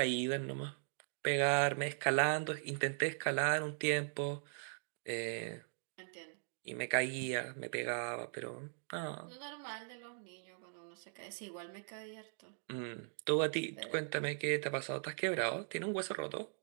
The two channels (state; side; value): silent; left; digital silence